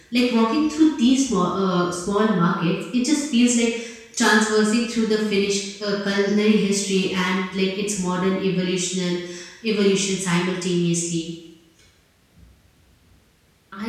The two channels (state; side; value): identical; both; correlation 1.00